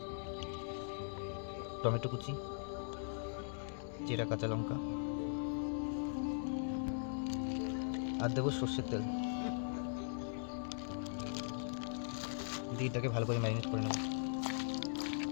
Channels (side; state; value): right; silent; digital silence